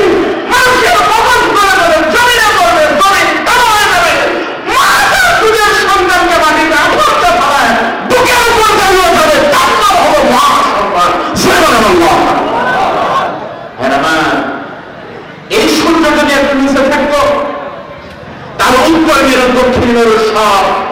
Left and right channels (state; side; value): identical; both; correlation 1.00